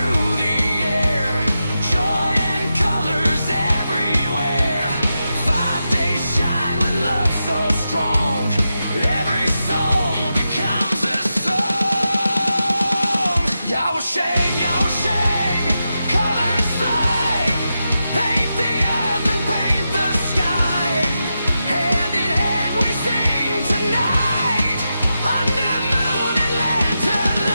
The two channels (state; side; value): inverted; both; correlation -0.89